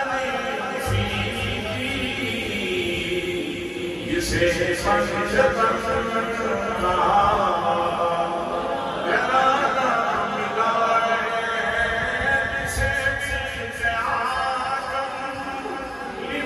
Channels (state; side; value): identical; both; correlation 1.00